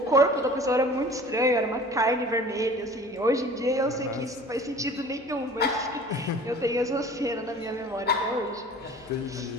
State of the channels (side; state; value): both; normal; correlation 0.45